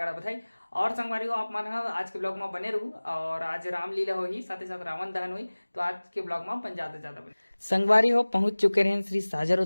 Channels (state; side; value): inverted; both; correlation -1.00